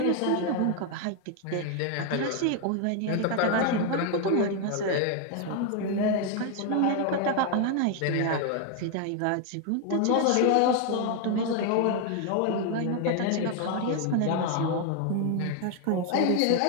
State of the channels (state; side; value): different; both; correlation 0.01